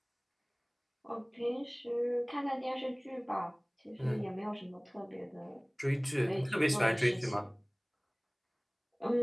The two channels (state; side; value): identical; both; correlation 1.00